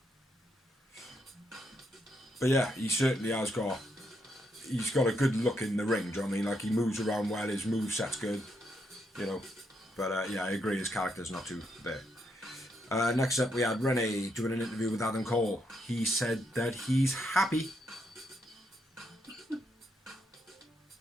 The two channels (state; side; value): normal; both; correlation 0.78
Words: But yeah, he certainly has got... He's got a good look in the ring, do you know what I mean? Like, he moves around well, his moveset's good, you know. But yeah, I agree, his character's not too there. Next up, we had Renee doing an interview with Adam Cole. He said that he's happy.